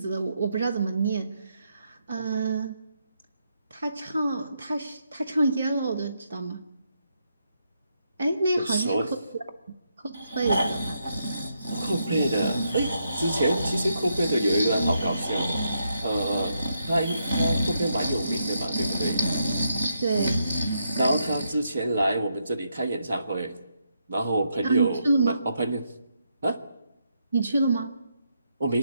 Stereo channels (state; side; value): inverted; both; correlation -0.79